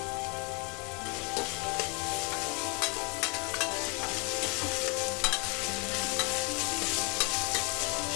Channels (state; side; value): quieter; right; 32.8 dB